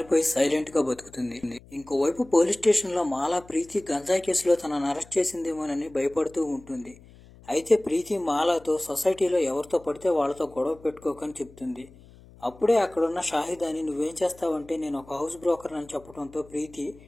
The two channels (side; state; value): left; noise; hum, 23 dB below the sound